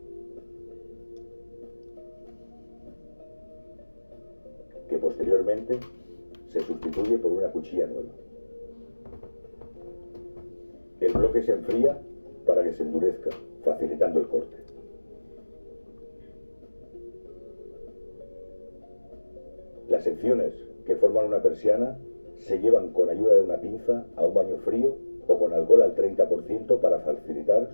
Que posteriormente se sustituye por una cuchilla nueva. El bloque se enfría para que se endurezca, facilitando el corte. Las secciones que forman una persiana se llevan con ayuda de una pinza a un baño frío o con alcohol al 30% para facilitar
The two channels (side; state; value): both; inverted; correlation -1.00